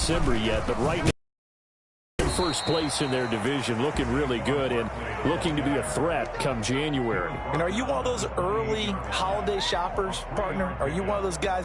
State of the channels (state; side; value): identical; both; correlation 1.00